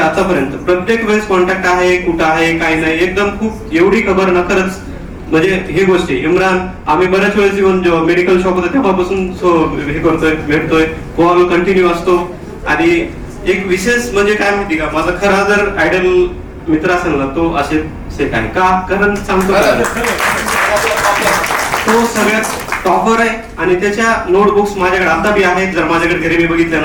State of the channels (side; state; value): both; identical; correlation 1.00